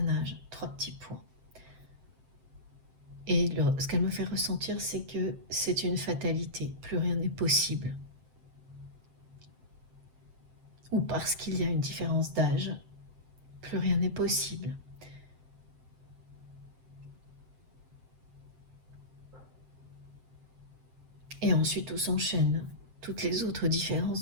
âge, 3 petits points. Et ce qu'elle me fait ressentir, c'est que c'est une fatalité, plus rien n'est possible. Ou parce qu'il y a une différence d'âge, plus rien n'est possible. Et ensuite tout s'enchaîne. Toutes les autres différences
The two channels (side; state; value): left; late; 7.7 ms